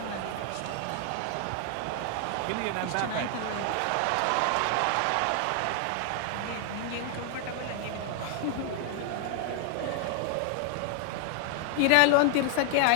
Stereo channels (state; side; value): different; both; correlation 0.00